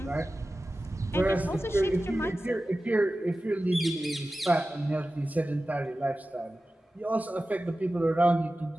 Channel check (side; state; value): both; normal; correlation 0.95